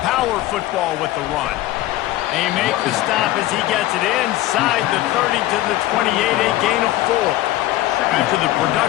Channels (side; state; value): right; quieter; 15.7 dB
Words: Power football with the run. They make the stop as he gets it inside the 30 to the 28, a gain of 4. After the